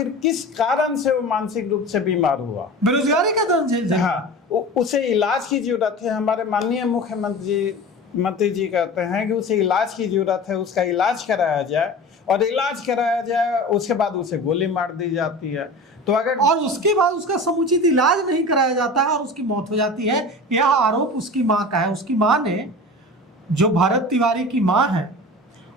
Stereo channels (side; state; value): both; normal; correlation 0.34